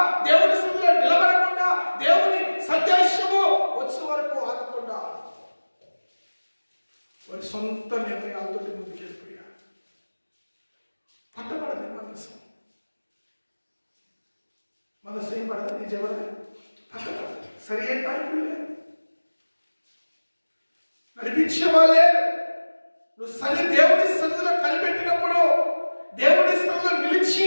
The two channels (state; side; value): inverted; both; correlation -1.00